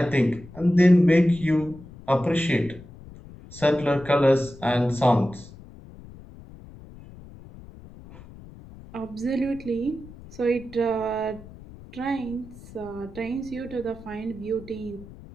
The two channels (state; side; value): noise; left; rumble, 18 dB below the sound